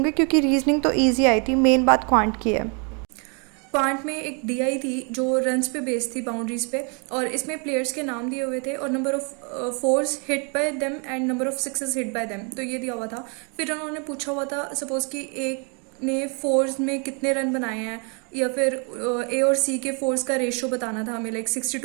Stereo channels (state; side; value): quieter; left; 36.2 dB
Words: क्योंकि रीजनिंग तो ईजी आई थी, मेन बात क्वांट की है। क्वांट में एक डीआई थी जो रन्स पे बेस्ड थी, बाउंड्रीज पे, और इसमें प्लेयर्स के नाम दिए हुए थे और number of force hit by them and number of sixes hit by them, तो ये दिया हुआ था। फिर उन्होंने पूछा हुआ था सपोज कि एक ने फोर्स में कितने रन बनाए हैं, या फिर ए और सी के फोर्स का रेशियो बताना था हमें। लाइक